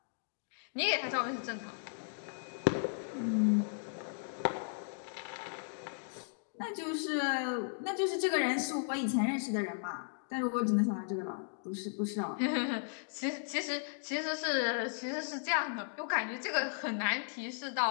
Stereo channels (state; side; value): silent; right; digital silence